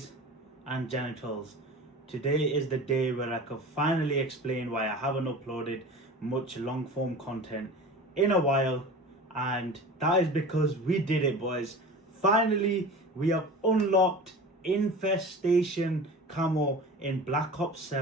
and genitals, today is the day where I can finally explain why I haven't uploaded much long form content in a while, and that is because we did it, boys. Finally, we have unlocked Infestation Camo in Black Ops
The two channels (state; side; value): normal; both; correlation 0.36